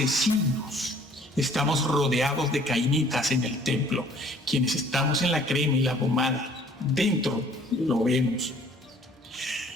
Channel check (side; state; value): both; normal; correlation 0.56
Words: Estamos rodeados de cainitas en el templo. Quienes estamos en la crema y la pomada, dentro lo vemos.